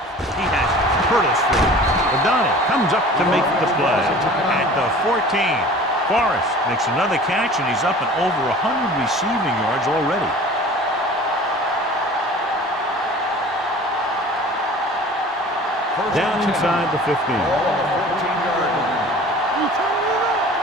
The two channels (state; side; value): normal; both; correlation 0.44